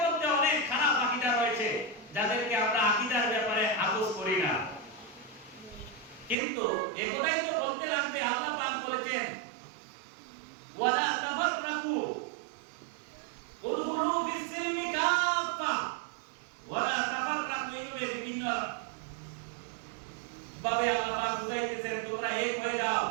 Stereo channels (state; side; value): drops out; left; at 6.4 s